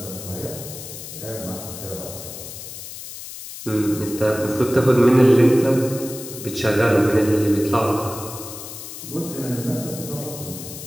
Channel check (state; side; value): noise; left; hiss, 11 dB below the sound